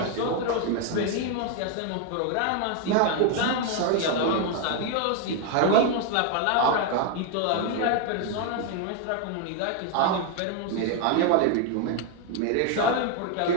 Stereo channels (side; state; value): both; different; correlation 0.01